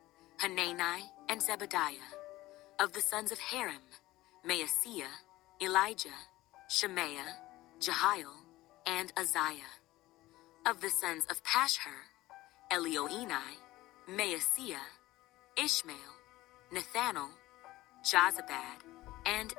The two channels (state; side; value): quieter; right; 17.5 dB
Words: Hanani and Zebediah. Of the sons of Harim, Maaseiah, Elijah, Shemaiah, Jehiel, and Uzziah. Of the sons of Pashhur, Elioenai, Maaseiah, Ishmael, Nethanel, Jozabad, and